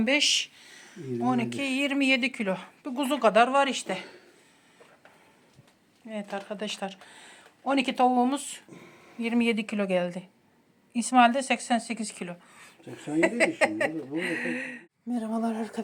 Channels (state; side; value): identical; both; correlation 1.00